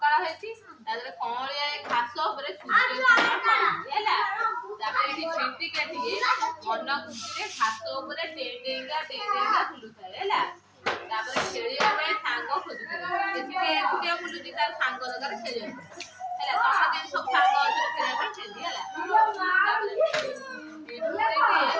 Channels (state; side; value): identical; both; correlation 1.00